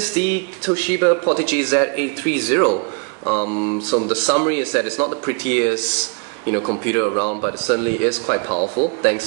the Toshiba Portege Z830. So the summary is that it's not the prettiest computer around, but it certainly is quite powerful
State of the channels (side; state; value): left; quieter; 35.5 dB